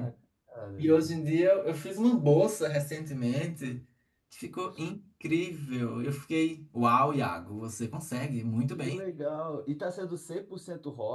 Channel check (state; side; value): identical; both; correlation 1.00